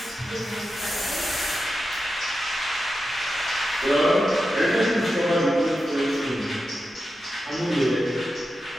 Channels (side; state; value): both; normal; correlation 0.90